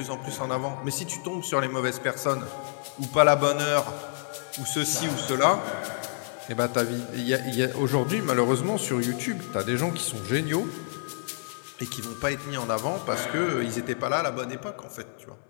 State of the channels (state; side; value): silent; right; 59 dB below the other